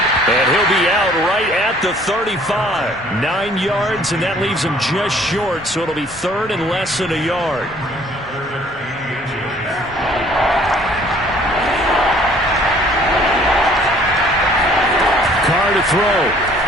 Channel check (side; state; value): both; normal; correlation 0.57